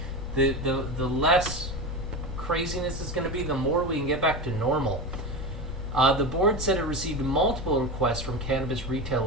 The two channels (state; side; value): normal; both; correlation 0.22